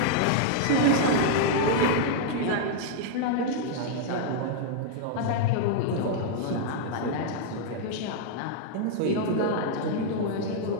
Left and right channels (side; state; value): both; different; correlation -0.01